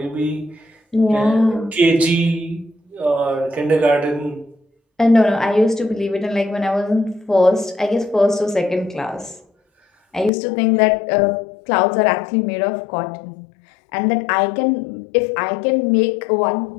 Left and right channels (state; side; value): drops out; right; at 10.3 s